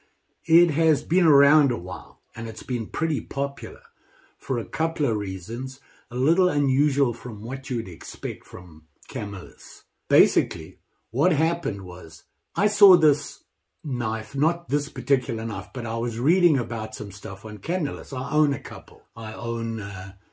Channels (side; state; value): both; identical; correlation 1.00